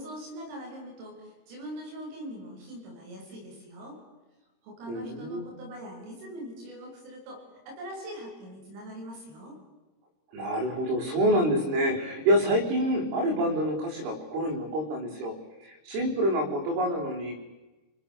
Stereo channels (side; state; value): left; late; 26 ms